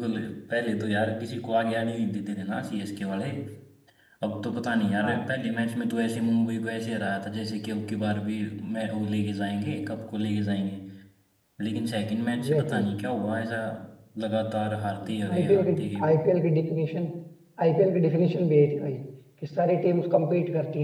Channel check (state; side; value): identical; both; correlation 1.00